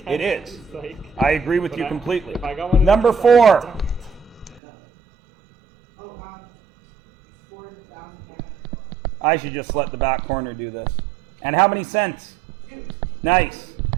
is. Like, I agree with you completely. If I got one Number 4. I should just let the back corner do this. And how many cents? Nice.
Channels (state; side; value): drops out; left; at 4.6 s